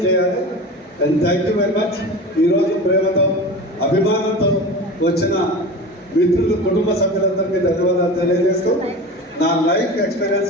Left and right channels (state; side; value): normal; both; correlation 0.32